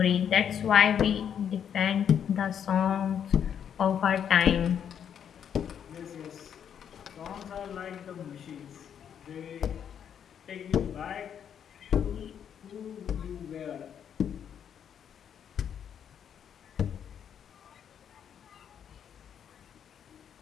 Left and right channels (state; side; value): quieter; right; 8.5 dB